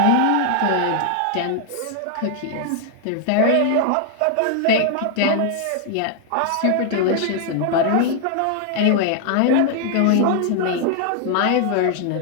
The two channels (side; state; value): both; different; correlation 0.00